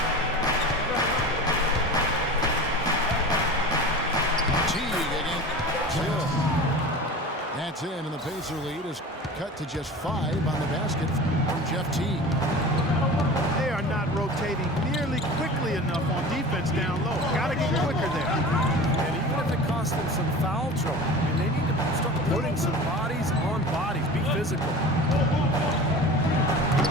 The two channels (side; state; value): both; normal; correlation 0.36